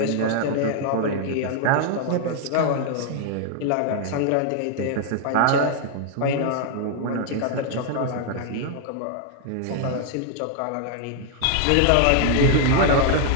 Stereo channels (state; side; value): different; both; correlation 0.00